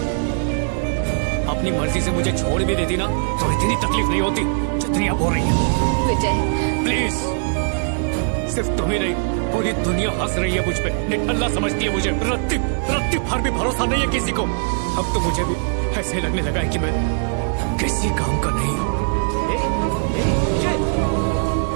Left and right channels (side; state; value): left; silent; 63 dB below the other